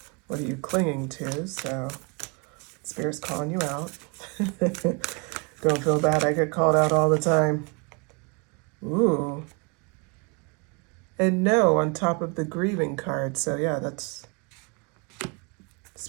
What are you clinging to? So, Spirit's calling you out. Don't feel bad. I get called out all the time. Ooh. And no, on top of the grieving card. So, yeah, that's...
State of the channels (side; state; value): left; quieter; 32.5 dB